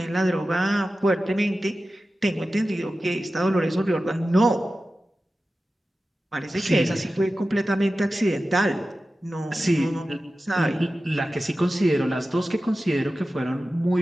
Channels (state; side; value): normal; both; correlation 0.94